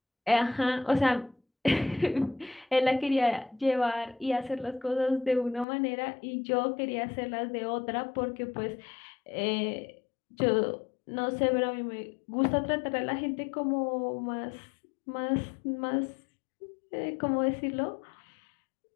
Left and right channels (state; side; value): drops out; right; at 5.7 s